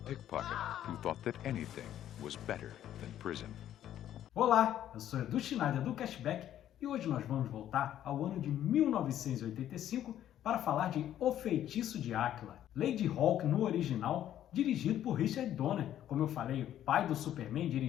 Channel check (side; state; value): right; quieter; 11.4 dB